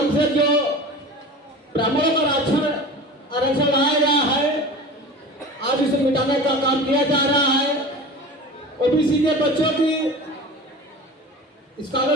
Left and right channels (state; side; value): normal; both; correlation 0.35